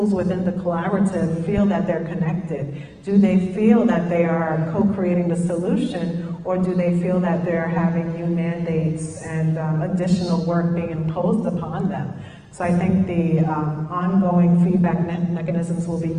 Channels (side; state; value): both; identical; correlation 1.00